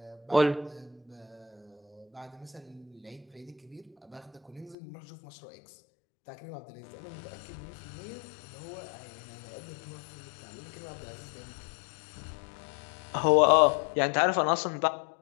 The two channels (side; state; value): right; drops out; at 4.8 s